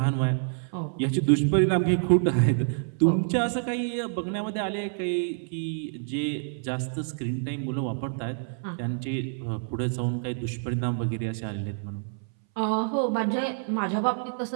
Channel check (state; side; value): silent; left; 60 dB below the other